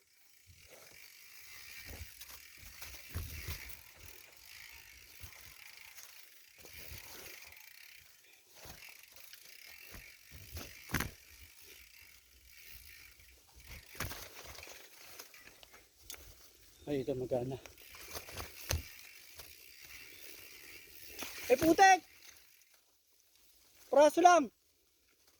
Ay, ito magana. Eh, putek! Praso lang!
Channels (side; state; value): both; identical; correlation 1.00